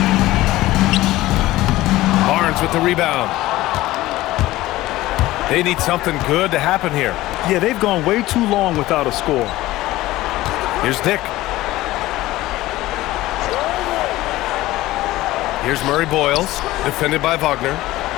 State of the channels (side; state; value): right; quieter; 17.1 dB